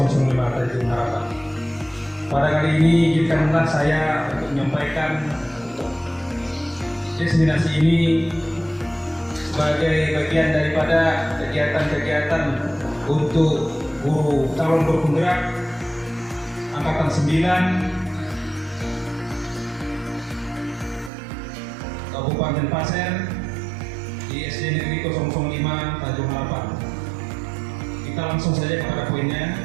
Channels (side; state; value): left; drops out; at 21.1 s